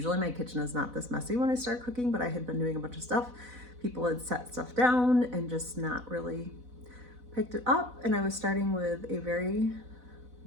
my kitchen is not this messy when I start cooking, but I had been doing a bunch of stuff. People had set stuff down and just not really picked it up, and I was starting with a very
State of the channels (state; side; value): late; left; 4.0 ms